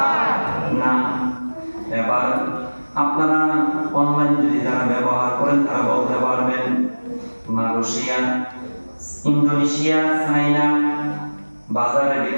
না। এবার আপনারা অনলাইন যদি যারা ব্যবহার করেন তারা বলতে পারবেন মালয়েশিয়া, ইন্দোনেশিয়া, চায়না বাজারের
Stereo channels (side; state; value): both; inverted; correlation -1.00